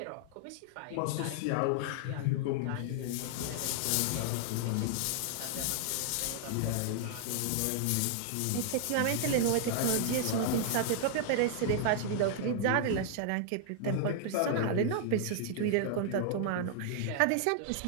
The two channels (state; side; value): different; both; correlation 0.00